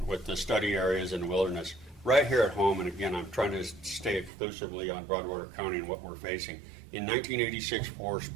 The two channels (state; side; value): drops out; left; at 4.3 s